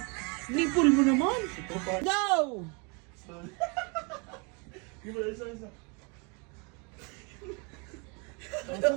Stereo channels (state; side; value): quieter; left; 32.7 dB